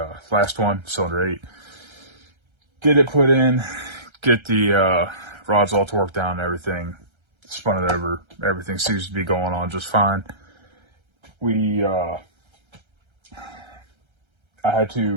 last one, cylinder 8. Get it put in, get the rods all torqued down and everything, spun it over. Everything seems to be going on just fine. I had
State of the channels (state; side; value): late; left; 1.3 ms